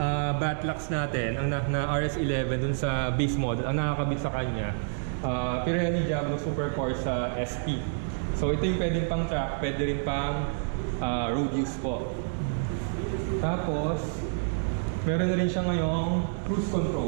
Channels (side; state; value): left; silent; digital silence